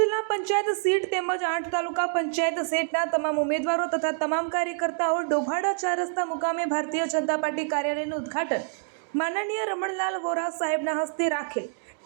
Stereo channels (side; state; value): left; silent; digital silence